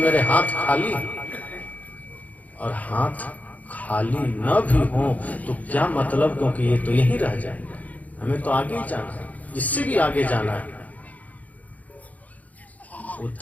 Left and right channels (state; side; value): late; right; 0.074 ms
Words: मेरे हाथ खाली। और हाथ खाली न भी हो तो क्या मतलब, क्योंकि ये तो यहीं रह जाएगा, हमें तो आगे ही जाना है, इससे भी आगे जाना है। वो